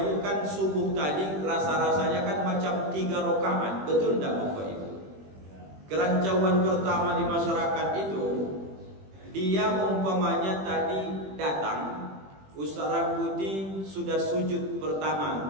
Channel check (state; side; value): late; left; 21 ms